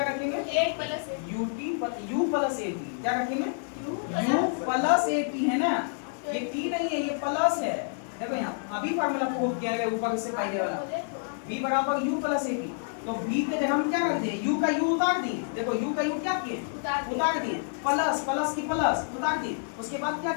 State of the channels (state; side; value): silent; right; 59 dB below the other